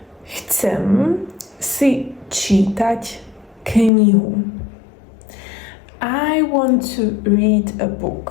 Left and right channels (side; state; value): right; drops out; at 3.9 s